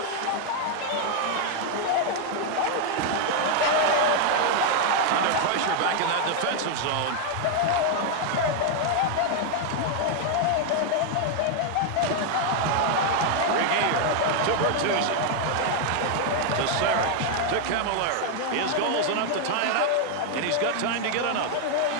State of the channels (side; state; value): both; different; correlation 0.00